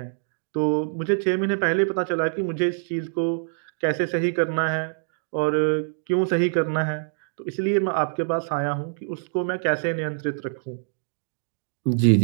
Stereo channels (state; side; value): silent; left; digital silence